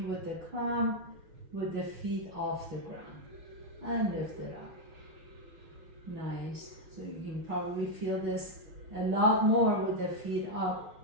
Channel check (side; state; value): left; late; 6.0 ms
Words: with the climb with the feet off the ground, and lift it up. Nice. So you can probably feel this a lot more with the feet up